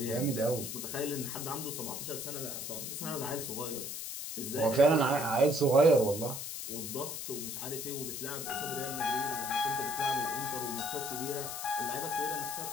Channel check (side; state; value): left; noise; hiss, 6 dB below the sound